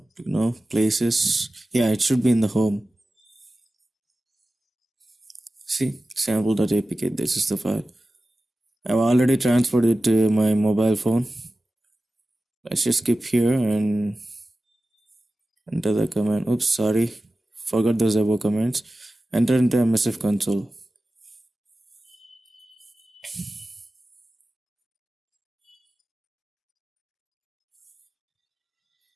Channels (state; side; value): normal; both; correlation 0.95